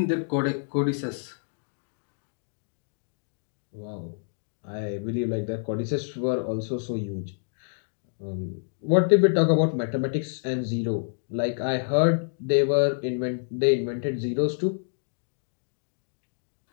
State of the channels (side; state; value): right; silent; digital silence